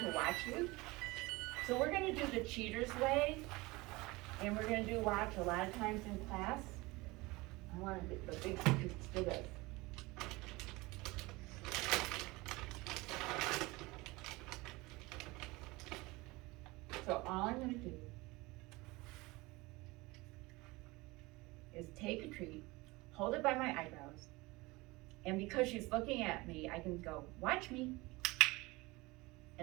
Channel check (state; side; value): quieter; left; 22.5 dB